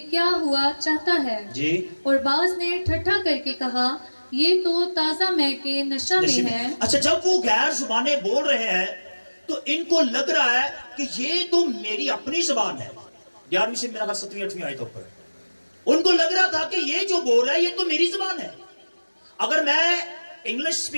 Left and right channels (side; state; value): both; inverted; correlation -1.00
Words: क्या हुआ चाहता है जी। और बाज ने ठट्ठा करके कहा, ये तो ताजा मह के नशा में है। अच्छा, जब वो गैर जुबानें बोल रहे हैं तो इनको लग रहा है कि ये तो मेरी अपनी जबान है। 11वीं से मेरा 7वीं 8वीं आयत ऊपर उनको लग रहा था कि ये जो बोल रहा है ये तो मेरी जबान है। अगर मैं इंग्लिश